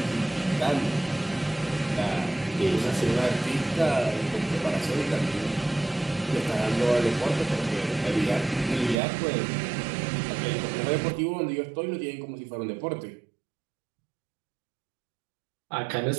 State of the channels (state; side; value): drops out; left; at 9.0 s